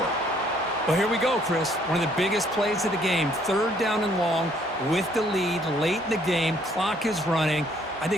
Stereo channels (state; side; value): normal; both; correlation 0.64